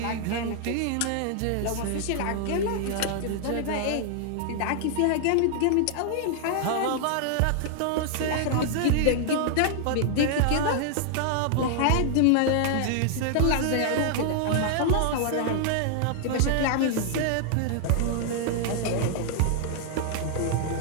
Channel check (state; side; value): different; both; correlation 0.00